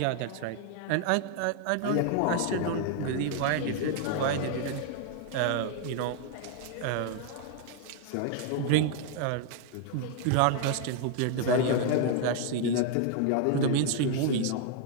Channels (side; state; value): both; different; correlation 0.00